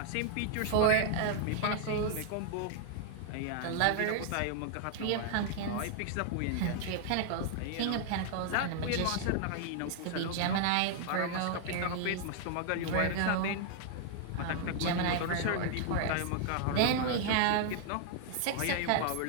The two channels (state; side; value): different; both; correlation 0.00